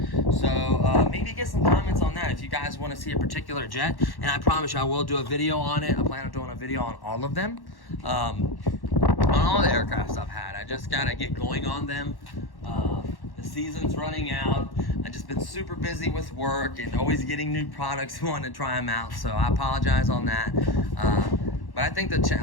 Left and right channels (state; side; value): late; right; 1.1 ms